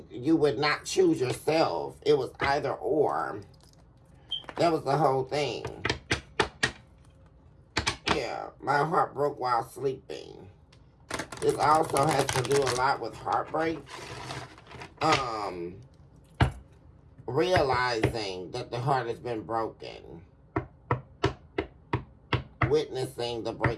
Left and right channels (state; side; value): identical; both; correlation 1.00